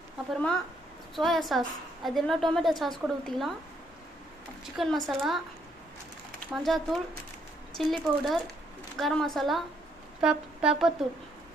அப்புறமா சோயா சாஸ், அது எல்லாம் டொமேட்டோ சாஸ் கூட ஊற்றிக்கலாம். Chicken masala, மஞ்சாத்தூள், chilli powder, garam masala, pepper தூள்,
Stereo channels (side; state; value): both; normal; correlation 0.71